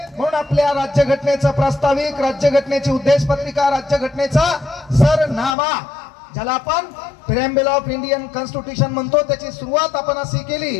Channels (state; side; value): drops out; right; at 5.6 s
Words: म्हणून आपल्या राज्यघटनेचं प्रास्ताविक, राज्यघटनेची उद्देशपत्रिका, राज्यघटनेचा सरनामा ज्याला आपण प्रिॲम्बल ऑफ इंडियन कॉन्स्टिट्यूशन म्हणतो, त्याची सुरुवात आपण अशी केली